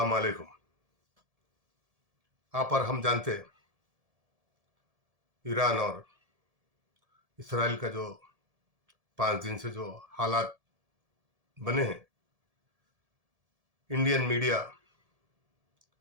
वालेकुम। आप और हम जानते हैं ईरान और इसराइल का जो 5 दिन से जो हालात बने हैं, इंडियन मीडिया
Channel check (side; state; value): left; late; 1.7 ms